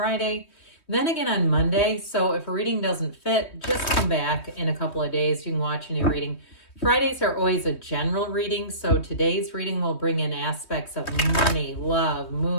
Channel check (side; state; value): right; late; 3.2 ms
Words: then again on Monday. So if a reading doesn't fit, just come back in a couple of days. You can watch a new reading. Fridays are always a general reading. So today's reading will bring in aspects of money, love,